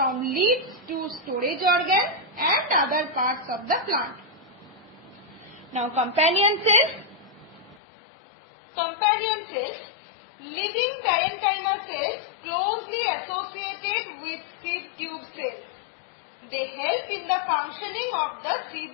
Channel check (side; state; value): right; drops out; at 7.8 s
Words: leaves to storage organs and other parts of the plant. Now companion cells. Companion cells, living parenchyma cells closely associated with seed tube cells. They help in the functioning of the